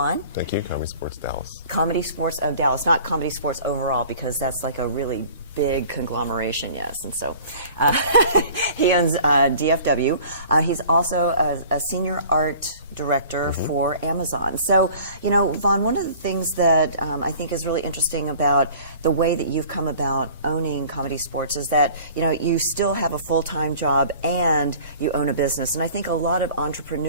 Thank you. Comedy Sports Dallas. Comedy Sports of Dallas, not Comedy Sports overall, because that's like a really big conglomeration, yes. And so he owns DFW. He's also a senior art director for Amazon. So, Vaughn, one of the things that I think is really interesting about the way that you've come about owning Comedy Sports is that, you still have a full-time job and you own a business. And I think a lot of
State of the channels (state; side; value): inverted; both; correlation -0.47